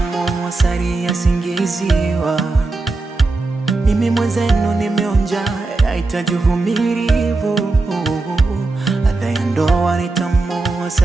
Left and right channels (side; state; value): left; quieter; 3.4 dB